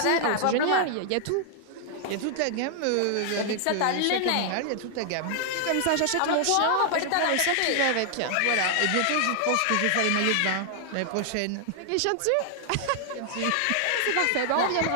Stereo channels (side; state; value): both; different; correlation 0.00